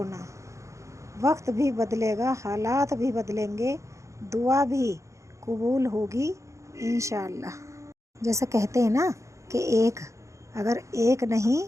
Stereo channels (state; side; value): late; left; 0.15 ms